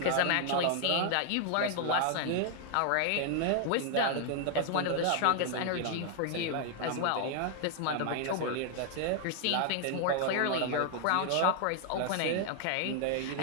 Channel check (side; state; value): both; different; correlation 0.00